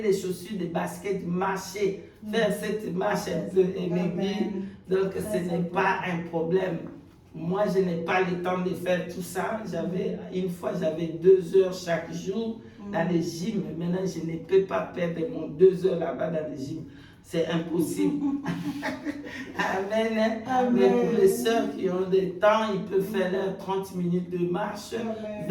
les chaussures, des baskets, marcher. Faire cette marche un peu maigrir. Donc, ce n'est pas un problème. Moi, je n'ai pas le temps de faire tout ça. Une fois, j'avais 2 heures chaque jour dans les gyms. Maintenant, je ne peux pas perdre mon 2 heures là-bas dans les gyms. C'est impossible. Amen. Mais pour les sœurs qui ont des temps, ils peuvent faire leurs 30 minutes de marche,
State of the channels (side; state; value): both; identical; correlation 1.00